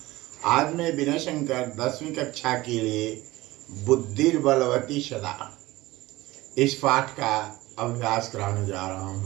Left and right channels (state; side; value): quieter; left; 19.0 dB